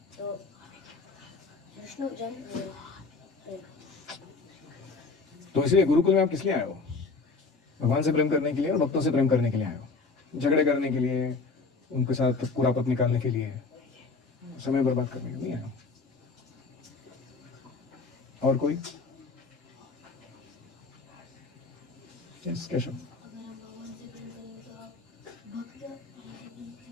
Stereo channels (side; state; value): right; quieter; 4.1 dB